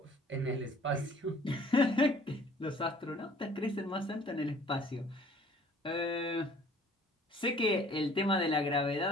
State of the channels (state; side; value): normal; both; correlation 0.53